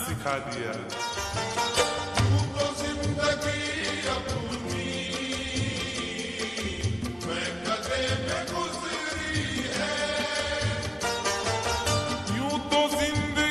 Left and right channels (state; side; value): identical; both; correlation 1.00